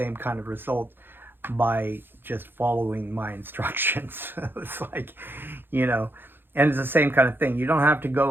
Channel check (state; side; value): late; left; 0.10 ms